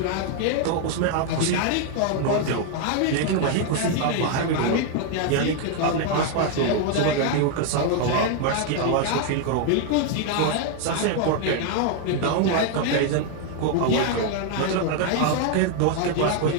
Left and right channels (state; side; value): different; both; correlation 0.00